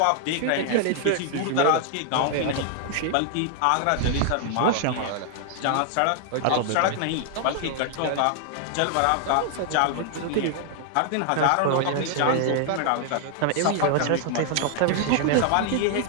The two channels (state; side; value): different; both; correlation 0.00